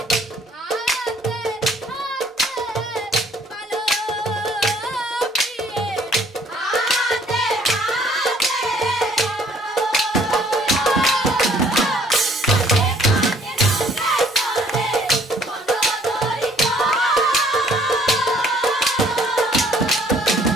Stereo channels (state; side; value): normal; both; correlation 0.60